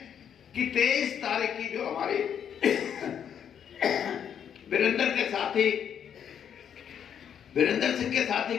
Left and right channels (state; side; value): quieter; right; 8.5 dB